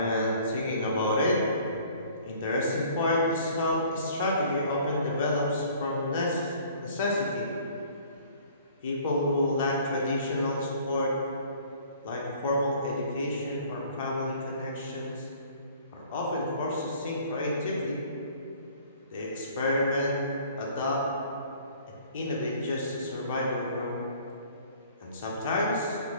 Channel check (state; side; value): inverted; both; correlation -0.53